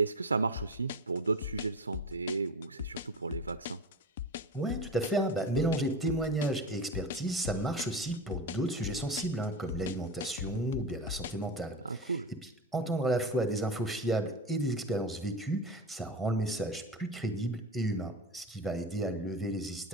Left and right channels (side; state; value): both; normal; correlation 0.24